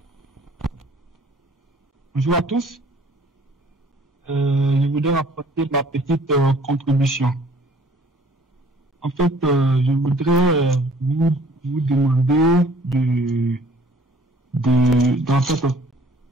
Bonjour à tous. Je voudrais apporter ma petite contribution. En fait, je voudrais vous demander d'en fait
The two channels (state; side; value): normal; both; correlation 0.55